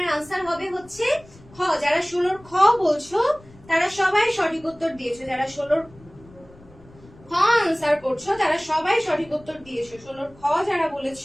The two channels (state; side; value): noise; left; rumble, 24 dB below the sound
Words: আনসার হবে হচ্ছে খ। যারা 16 খ বলছো তারা সবাই সঠিক উত্তর দিয়েছো। যারা 16 খ আনসার করছো তারা সবাই সঠিক উত্তর দিয়েছো। 16 খ যারা